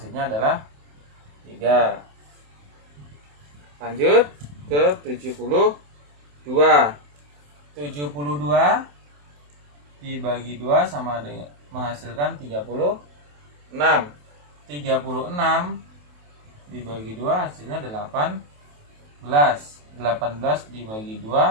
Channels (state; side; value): late; left; 28 ms